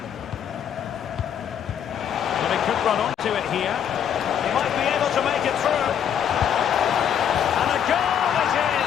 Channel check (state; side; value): quieter; right; 8.8 dB